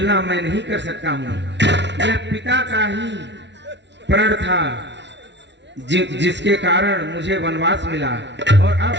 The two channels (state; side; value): late; left; 0.51 ms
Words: मैं नहीं कर सकता हूँ। यह पिता का ही प्रण था जिसके कारण मुझे वनवास मिला, और अब